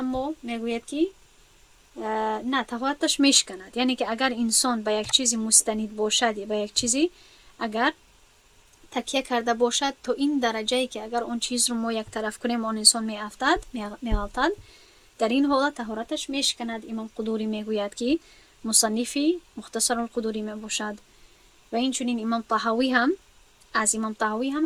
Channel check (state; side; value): identical; both; correlation 1.00